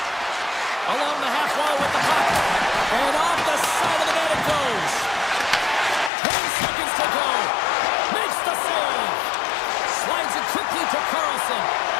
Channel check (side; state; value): right; drops out; at 6.1 s